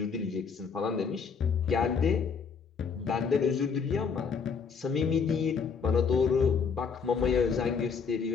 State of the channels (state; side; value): quieter; right; 5.8 dB